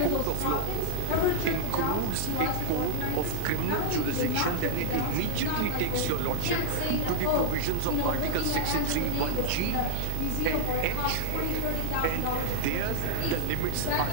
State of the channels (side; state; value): both; different; correlation 0.00